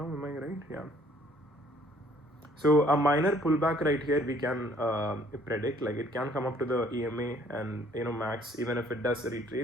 am I right? Yeah. So a minor pullback right here we can predict, like it can come up to the EMA and max. Even if it does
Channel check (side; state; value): both; normal; correlation 0.60